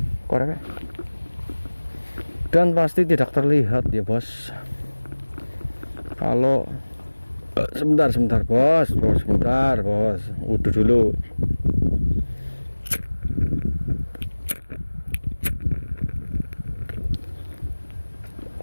koreknya. Dan pasti tidak terlihat ya bos. Kalau sebentar bos, sebentar bos, udah dulu.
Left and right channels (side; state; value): both; inverted; correlation -1.00